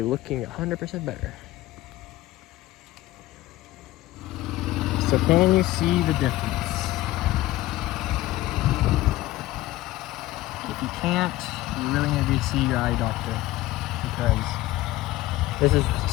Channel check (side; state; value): right; quieter; 16.7 dB